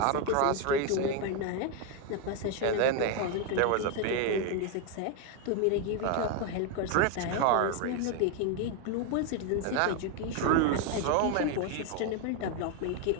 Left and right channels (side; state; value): both; different; correlation 0.01